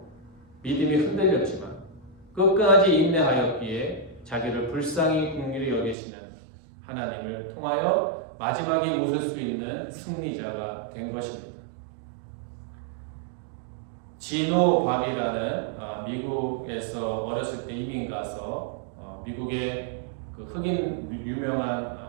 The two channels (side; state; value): left; drops out; at 6.0 s